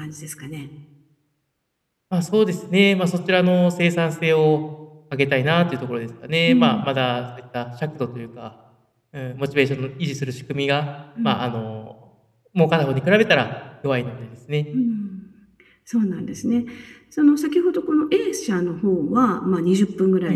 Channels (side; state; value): both; identical; correlation 1.00